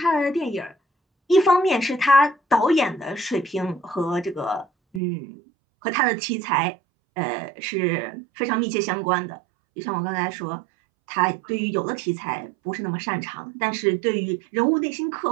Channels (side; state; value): left; drops out; at 5.0 s